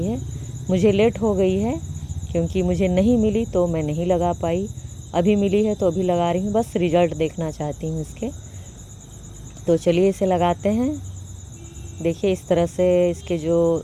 है। मुझे लेट हो गई है, क्योंकि मुझे नहीं मिली तो मैं नहीं लगा पाई। अभी मिली है तो अभी लगा रही हूँ, बस रिज़ल्ट देखना चाहती हूँ इसके। तो चलिए इसे लगाते हैं। देखिए, इस तरह से इसके जो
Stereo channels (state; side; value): identical; both; correlation 1.00